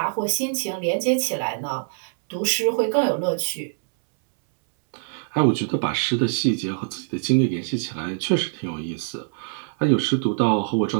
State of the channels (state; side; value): silent; left; 63 dB below the other